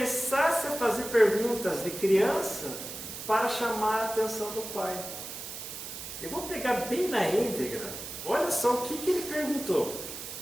a fazer perguntas de criança para chamar a atenção do pai. Eu vou pegar bem na íntegra. Olha só o que ele perguntou.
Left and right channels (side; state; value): right; noise; hiss, 9 dB below the sound